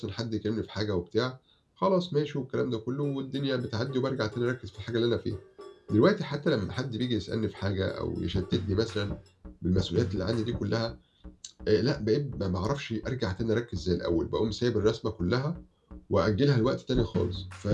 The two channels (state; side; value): identical; both; correlation 1.00